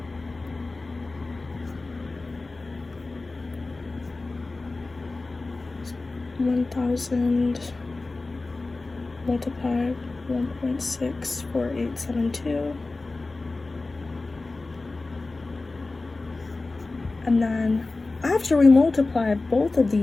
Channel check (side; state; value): right; quieter; 3.4 dB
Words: So 1,000 multiplied 1.64872, and then after we multiply both of